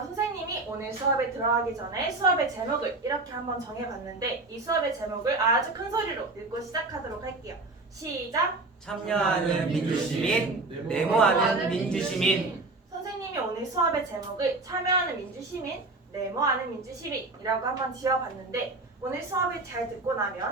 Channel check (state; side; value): quieter; left; 3.2 dB